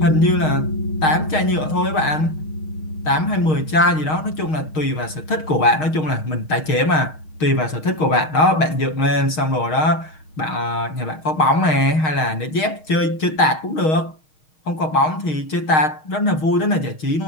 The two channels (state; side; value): late; right; 6.4 ms